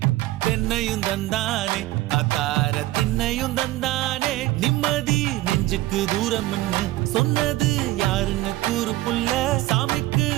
தென்னையும் தந்தானே அத்தார திண்ணையும் தந்தானே நிம்மதி நெஞ்சுக்கு தூரம்னு சொன்னது யாருன்னு கூறு புள்ள சாமிக்கு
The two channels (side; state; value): left; quieter; 17.4 dB